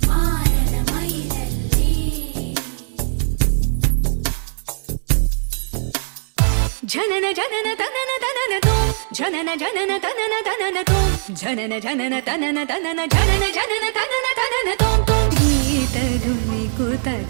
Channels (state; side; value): silent; left; digital silence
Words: जनन जनन तनन तनन तू जनन जनन तनन तनन तू जनन जनन तनन तनन जनन जनन तनन तनन तुम गीत धुनी को